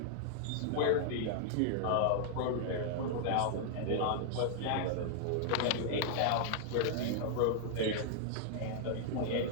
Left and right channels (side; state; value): both; different; correlation 0.00